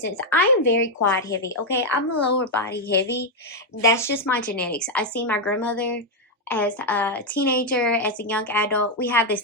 I am very quad heavy. Okay, I'm a lower body heavy. That's just my genetics. I see my grandmother as a teenager, as a young adult. We have the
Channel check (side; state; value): both; normal; correlation 0.01